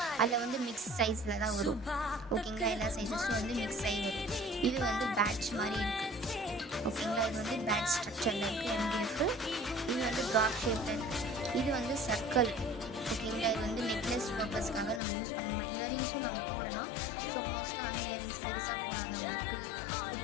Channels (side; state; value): right; drops out; at 15.0 s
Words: அதில் வந்து மிக்ஸ் சைஸில் தான் வரும், ஓகேங்களா. எல்லா சைஸஸும் வந்து மிக்ஸ் ஆகி வரும். இது வந்து பேட்ச் மாதிரி இருக்குது, ஓகேங்களா. இது வந்து பேட்ச் ஸ்ட்ரக்சரில் இருக்குது எம்டிஎஃப். இது வந்து ட்ராப் ஷேப்பில் இருக்குது. இது வந்து சர்க்கிள், ஓகேங்களா. இது வந்து நெக்லஸ் பர்பஸ்க்காக நம்ம யூஸ் பண்ணலாம். இயரிங்ஸும் நம்ம போடலாம். ஸோ மோஸ்ட்டாக வந்து இயரிங்ஸ் பெருசாக போடாதவங்களுக்கு,